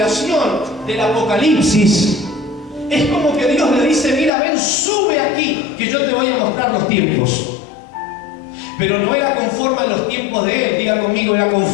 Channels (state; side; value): drops out; right; at 4.3 s